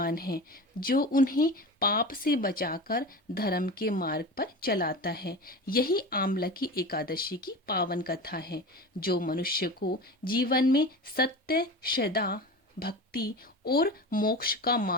है, जो उन्हें पाप से बचाकर धर्म के मार्ग पर चलाता है। यही आमलकी एकादशी की पावन कथा है, जो मनुष्य को जीवन में सत्य, श्रद्धा, भक्ति और मोक्ष का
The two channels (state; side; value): normal; both; correlation 0.30